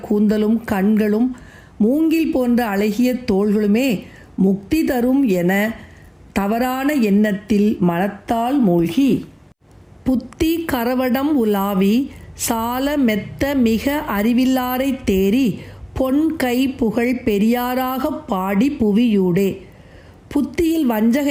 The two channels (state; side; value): identical; both; correlation 1.00